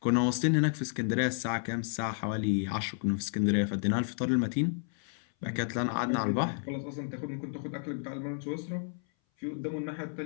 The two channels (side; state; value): right; silent; 57 dB below the other